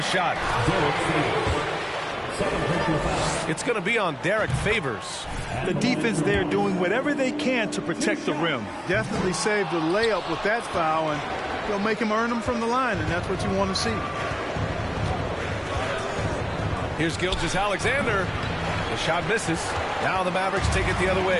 shot. It's going to be on Derek Favors. The defense there doing whatever they can to protect the rim. Definitely saved the layup with that foul, and they'll make him earn them from the line, and that's what you want to see. Here's Gilgeous-Alexander. The shot misses. Now the Mavericks take it the other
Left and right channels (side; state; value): both; identical; correlation 1.00